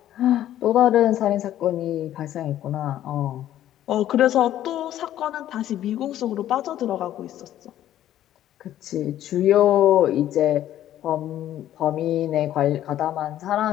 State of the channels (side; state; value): right; quieter; 12.3 dB